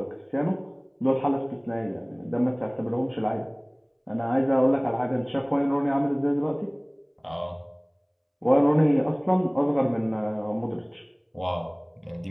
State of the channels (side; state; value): both; identical; correlation 1.00